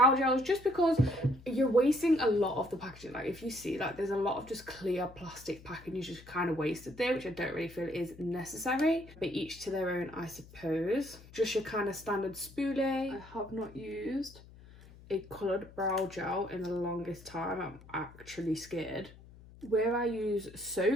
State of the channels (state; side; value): noise; left; hum, 21 dB below the sound